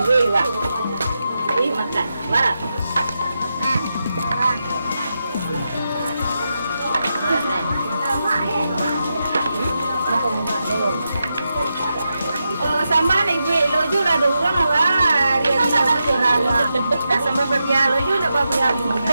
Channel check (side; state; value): both; inverted; correlation -0.87